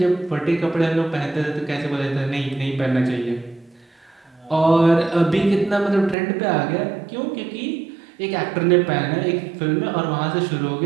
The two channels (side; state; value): left; drops out; at 6.2 s